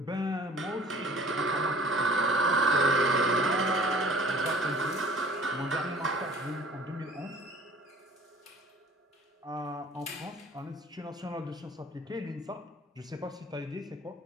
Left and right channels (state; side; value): normal; both; correlation 0.49